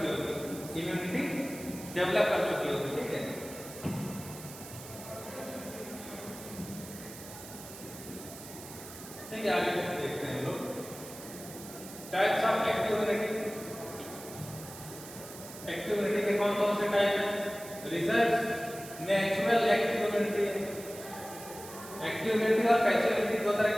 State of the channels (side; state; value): right; noise; hiss, 14 dB below the sound